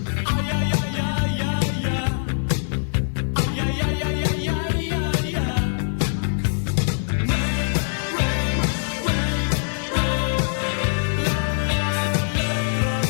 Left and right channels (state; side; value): silent; right; digital silence